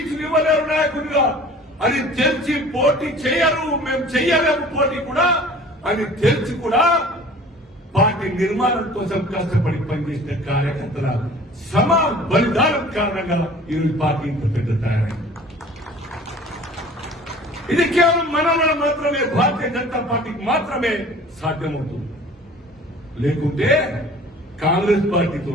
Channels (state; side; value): normal; both; correlation 0.47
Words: ఇవ్వలేరు నాయకులుగా. అది తెలిసి పోటీ చేయరు, మేము చెయ్యలేము పోటీ కూడా అని తెలిసి కూడా పార్టీ నిర్మాణం కోసం కష్టపడి పనిచేసిన కార్యకర్తల సమ బలిదానం కారణంగా ఈరోజు పార్టీ ఇంత పెద్ద తయారైంది. ఇది కేవలం మన మాత్రమే, భారతీయ జనతా పార్టీకి మాత్రమే సాధ్యమవుతుంది. లేకుంటే కాంగ్రెస్